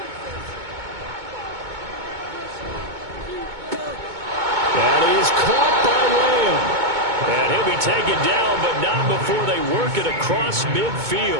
That is caught by Lamb. And he'll be taken down, but not before they work it across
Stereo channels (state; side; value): late; left; 2.2 ms